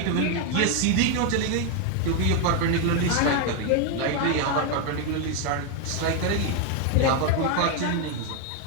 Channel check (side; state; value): both; different; correlation 0.01